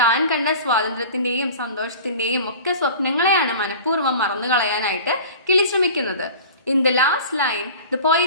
കണ്ട സ്വാതന്ത്ര്യത്തിന്റെയും സന്തോഷത്തിന്റെയും ഒക്കെ സ്വപ്നങ്ങളെയാണ് മനഃപൂർവ്വം മറന്നു കളയാനായിട്ട് കിളി ശ്രമിക്കുന്നത്. In the last line, the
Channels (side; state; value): both; inverted; correlation -0.40